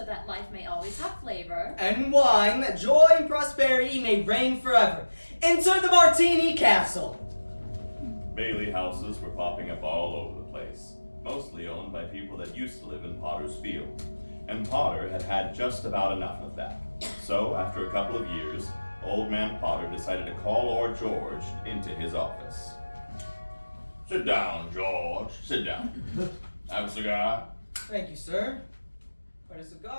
that life may always have flavor. And wine, that joy and prosperity may reign forever. Enter the Martini Castle. Bailey houses were popping up all over the place, mostly owned by people that used to live in Potter's Field. And Potter had had just about enough of that. So, after a couple of years, Old Man Potter decided to call Lord George into his office. Sit down, George. Sit down. Have a cigar? Thank you, sir. What a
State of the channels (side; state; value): both; inverted; correlation -1.00